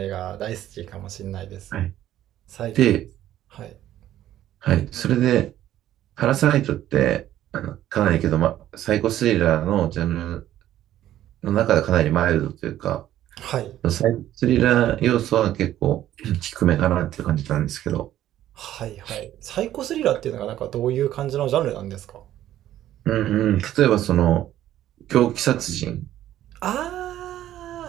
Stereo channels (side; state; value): left; quieter; 12.7 dB